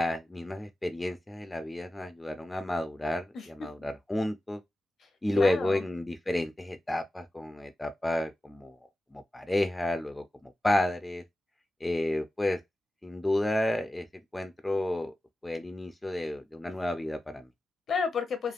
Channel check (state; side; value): normal; both; correlation 0.94